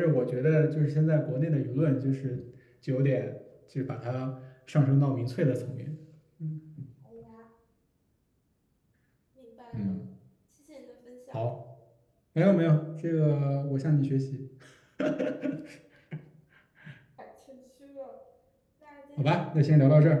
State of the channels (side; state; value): both; identical; correlation 1.00